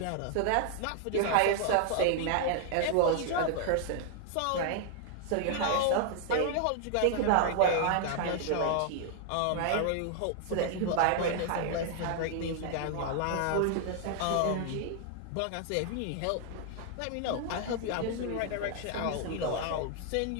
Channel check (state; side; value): different; both; correlation 0.00